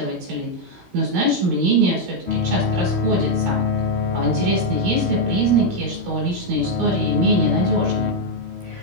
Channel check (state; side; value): late; left; 16 ms